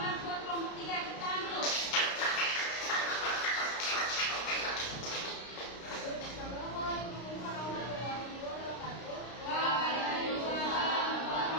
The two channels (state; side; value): late; right; 32 ms